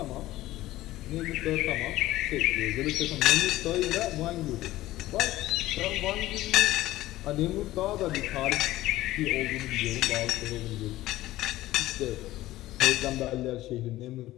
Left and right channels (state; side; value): quieter; right; 16.2 dB